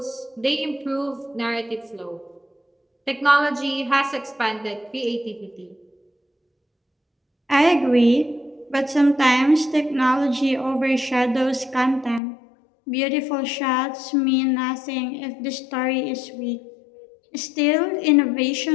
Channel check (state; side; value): drops out; right; at 12.2 s